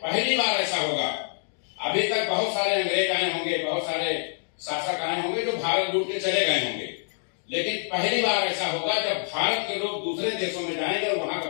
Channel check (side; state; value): right; silent; 61 dB below the other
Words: बार ऐसा होगा, अभी तक बहुत सारे अंग्रेज आए होंगे, बहुत सारे शासक आए होंगे जो भारत लूट के चले गए होंगे, लेकिन पहली बार ऐसा होगा जब भारत के लोग दूसरे देशों में जाएंगे और वहां का